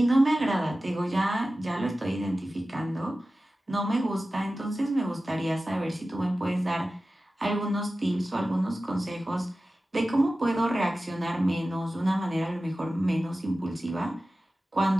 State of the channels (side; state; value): both; normal; correlation 0.95